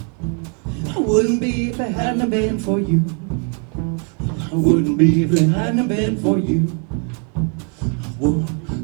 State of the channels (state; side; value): quieter; left; 39.8 dB